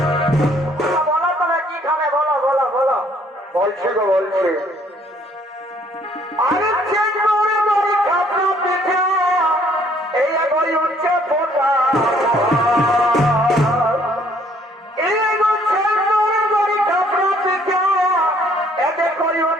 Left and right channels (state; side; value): normal; both; correlation 0.62